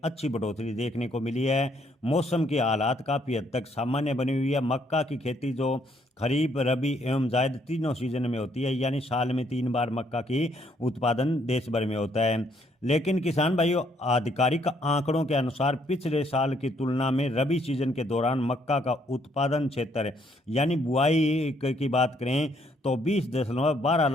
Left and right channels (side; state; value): both; normal; correlation 0.69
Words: अच्छी बढ़ोतरी देखने को मिली है। मौसम के हालात काफ़ी हद तक सामान्य बनी हुई है। मक्का की खेती जो खरीफ, रबी एवं जायद तीनों सीजन में होती है, यानी साल में 3 बार मक्का की उत्पादन देश भर में होता है। लेकिन किसान भाइयों, आधिकारिक आंकड़ों के अनुसार पिछले साल की तुलना में रबी सीजन के दौरान मक्का का उत्पादन क्षेत्र यानी बुआई की बात करें तो 20.12